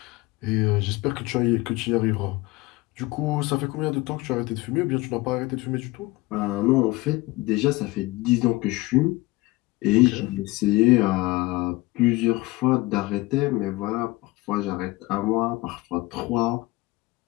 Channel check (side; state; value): right; quieter; 20.9 dB